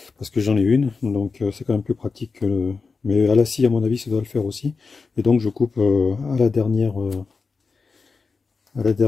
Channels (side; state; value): right; quieter; 4.6 dB